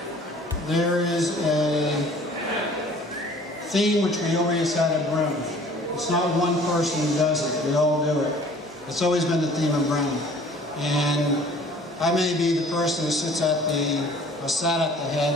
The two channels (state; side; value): normal; both; correlation 0.51